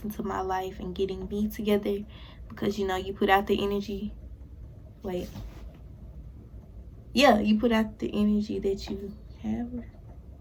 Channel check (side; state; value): both; identical; correlation 1.00